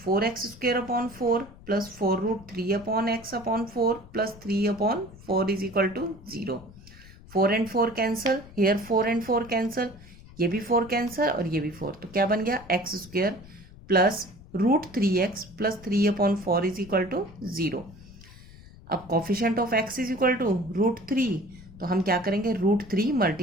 plus 4√3/x/4 plus 3/4 is equal to 0. 4 and 4 cancel, here 4 and 4 cancel, ये भी 4 कैंसल और ये भी 4, तो क्या बन गया x² plus √3x plus 3/4 is equal to 0. अब coefficient of x is equal to √3, तो हम क्या करेंगे √3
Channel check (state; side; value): noise; left; rumble, 20 dB below the sound